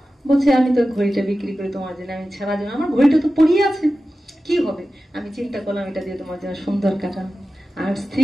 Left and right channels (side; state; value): both; normal; correlation 0.94